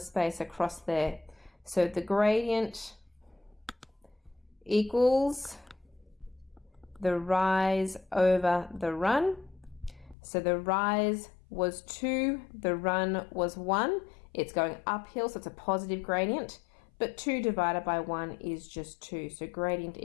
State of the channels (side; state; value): right; drops out; at 10.2 s